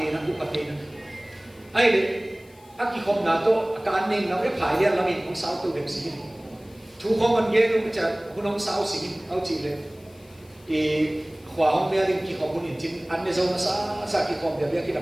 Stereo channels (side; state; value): left; noise; hiss, 28 dB below the sound